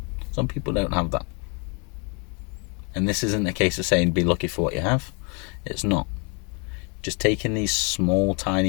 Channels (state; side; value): quieter; right; 34.7 dB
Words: Some people don't have that. And this isn't a case of saying be lucky for what you have. It's not. Just taking these small,